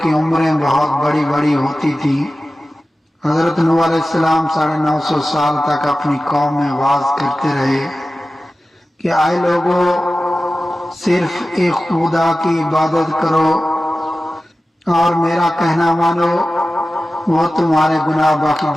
کی عمریں بہت بڑی بڑی ہوتی تھیں۔ حضرت نوح علیہ السلام 950 سال تک اپنی قوم میں واعظ کرتے رہے کہ اے لوگوں، صرف ایک خدا کی عبادت کرو اور میرا کہنا مانو، وہ تمہارے گناہ بخش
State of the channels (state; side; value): normal; both; correlation 0.95